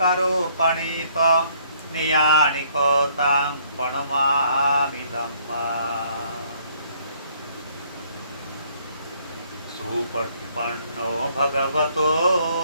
पणित नियानिको तं प्रणमामि धम्मा सुपटिपन्नो भगवतो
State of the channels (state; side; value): inverted; both; correlation -0.64